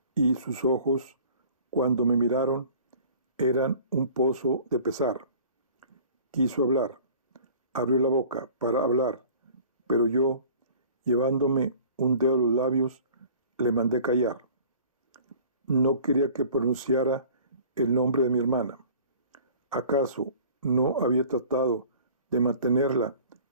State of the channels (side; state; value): both; inverted; correlation -0.48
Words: y sus ojos, cuando me miraron, eran un pozo de pesar. Quiso hablar, abrió la boca para hablar, pero yo, llevándome un dedo a los labios, le mandé callar. No quería que pronunciara el nombre de mi hermana. ¿Acaso no había tratado de mantenerla